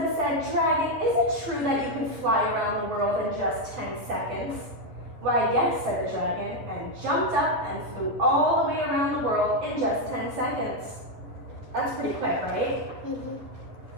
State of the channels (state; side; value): late; left; 10 ms